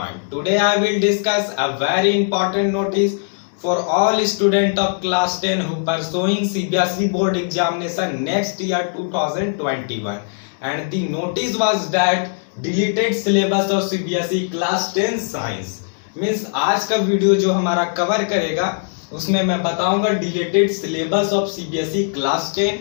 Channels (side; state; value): right; silent; 66 dB below the other